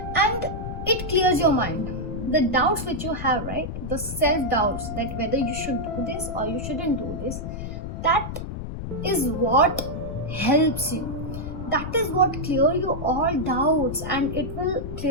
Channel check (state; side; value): noise; left; rumble, 7 dB below the sound